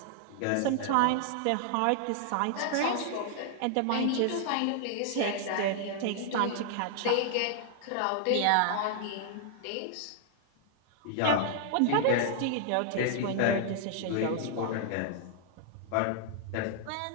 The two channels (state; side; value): different; both; correlation 0.00